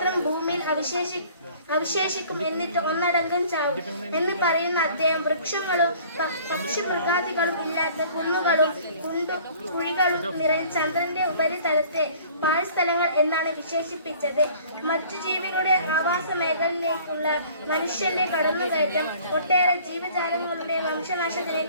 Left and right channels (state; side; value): inverted; both; correlation -0.51